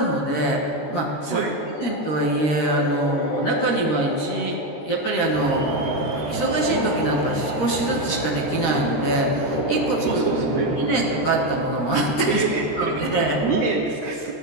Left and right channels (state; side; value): late; right; 13 ms